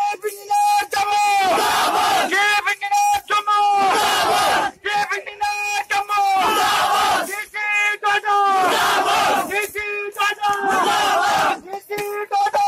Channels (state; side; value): identical; both; correlation 1.00